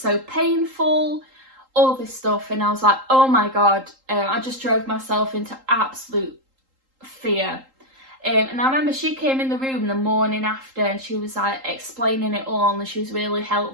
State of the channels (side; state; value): left; late; 3.8 ms